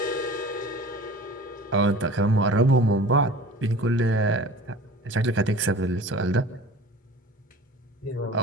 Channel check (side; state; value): both; normal; correlation 0.41